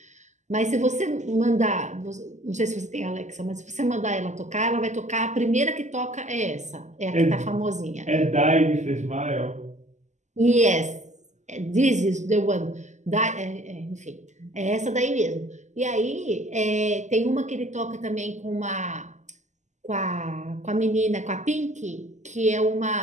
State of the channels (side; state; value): left; late; 0.34 ms